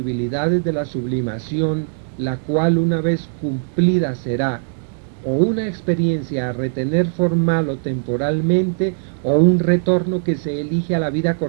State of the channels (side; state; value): left; silent; digital silence